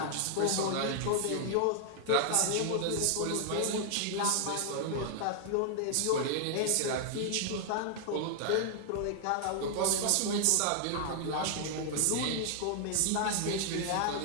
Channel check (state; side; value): different; both; correlation 0.00